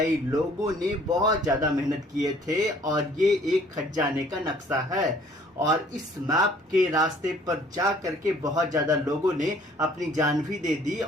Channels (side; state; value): both; normal; correlation 0.57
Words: लोगों ने बहुत ज्यादा मेहनत किए थे और ये एक खजाने का नक्शा है और इस मैप के रास्ते पर जा करके बहुत ज्यादा लोगों ने अपनी जान भी दे दी